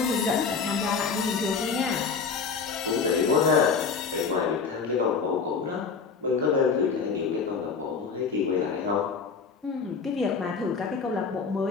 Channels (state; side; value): quieter; right; 5.3 dB